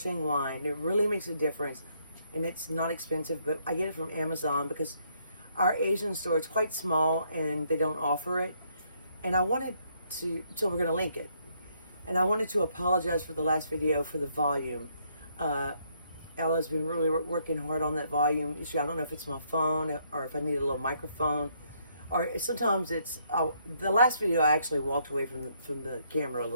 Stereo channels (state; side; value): inverted; both; correlation -0.71